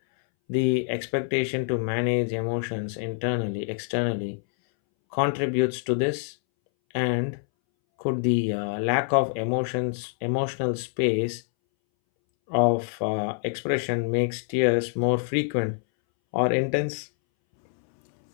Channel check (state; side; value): silent; right; 61 dB below the other